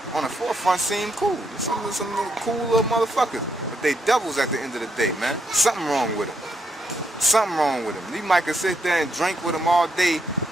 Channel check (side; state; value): both; normal; correlation 0.77